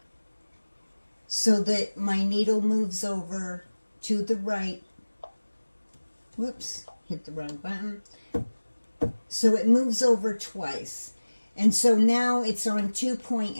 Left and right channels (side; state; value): both; inverted; correlation -1.00